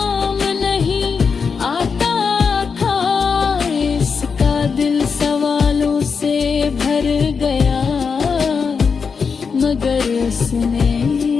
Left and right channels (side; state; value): right; quieter; 5.6 dB